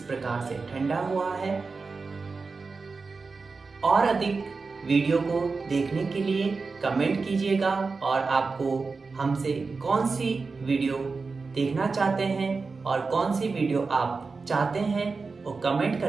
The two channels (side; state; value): left; quieter; 4.3 dB